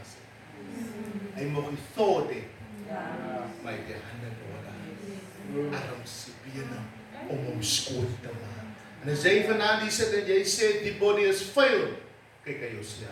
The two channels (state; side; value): identical; both; correlation 1.00